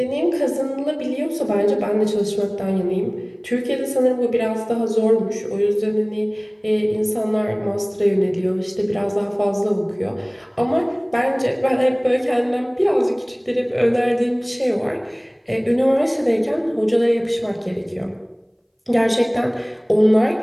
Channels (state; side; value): identical; both; correlation 1.00